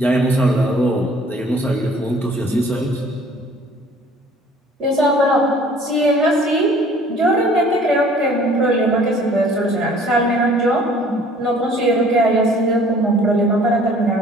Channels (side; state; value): both; normal; correlation 0.54